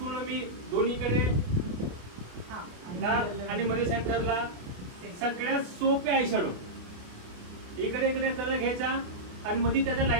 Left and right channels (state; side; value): late; left; 28 ms